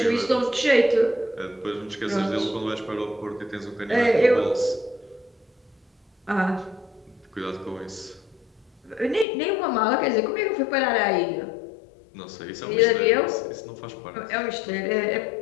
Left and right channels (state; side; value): drops out; right; at 9.2 s